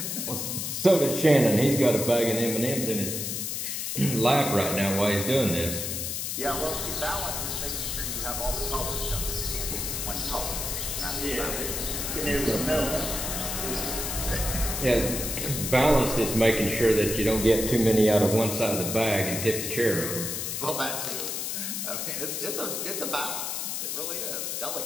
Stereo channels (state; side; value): noise; left; hiss, 3 dB below the sound